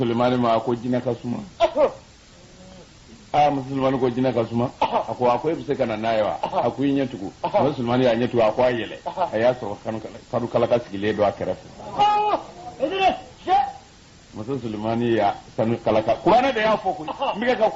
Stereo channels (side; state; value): both; identical; correlation 1.00